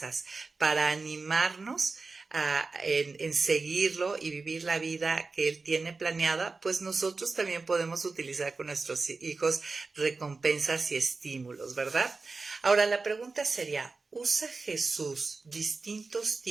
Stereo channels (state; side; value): quieter; left; 4.0 dB